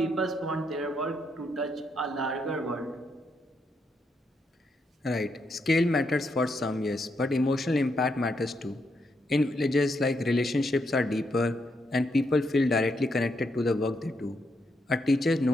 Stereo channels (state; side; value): normal; both; correlation 0.79